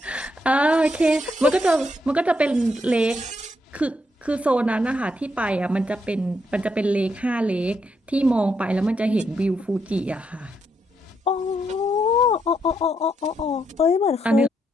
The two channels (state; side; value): normal; both; correlation 0.78